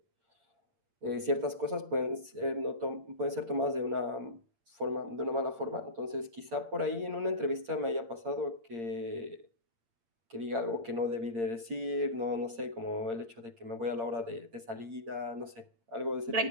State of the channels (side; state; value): left; late; 8.7 ms